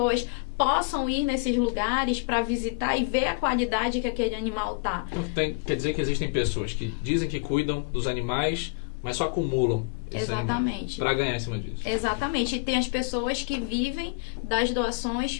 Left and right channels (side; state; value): right; quieter; 32.8 dB